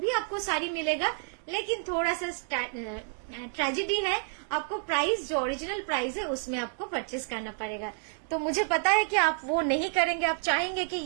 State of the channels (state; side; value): silent; left; 58 dB below the other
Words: भी आपको साड़ी मिलेगा, लेकिन थोड़ा सा ट्रेजेडी है, आपको प्राइस जो ओरिजिनल प्राइस है उसमें आपको परचेस करना पड़ेगा। तो मुझे पता है कि आप वो नहीं करेंगे, आप चाहेंगे कि